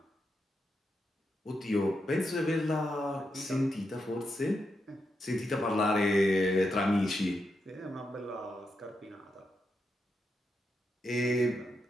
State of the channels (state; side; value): normal; both; correlation 0.84